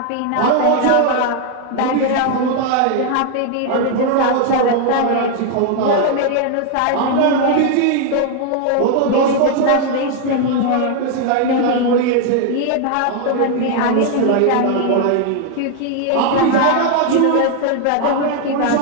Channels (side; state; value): both; different; correlation 0.00